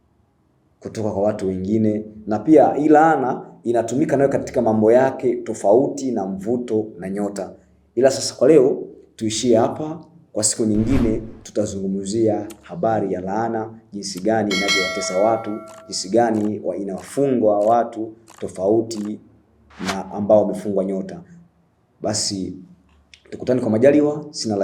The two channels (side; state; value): both; identical; correlation 1.00